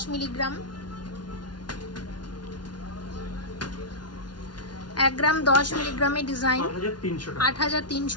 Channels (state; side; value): late; right; 0.70 ms